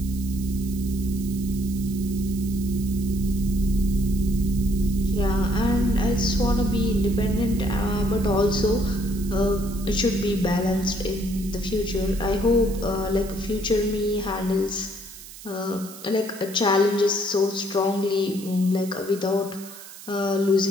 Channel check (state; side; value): noise; right; hiss, 16 dB below the sound